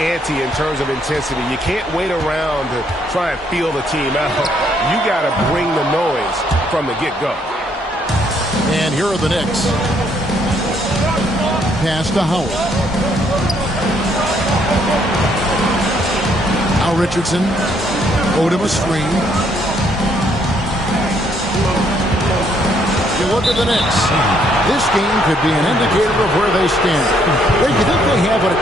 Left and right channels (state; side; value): normal; both; correlation 0.69